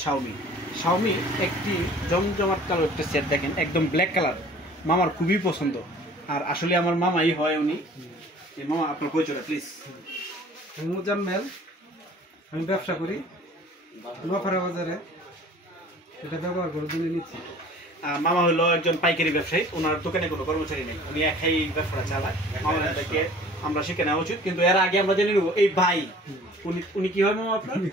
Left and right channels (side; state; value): both; normal; correlation 0.48